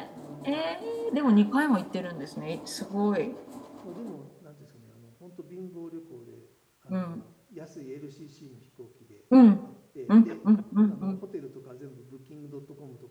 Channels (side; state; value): both; identical; correlation 1.00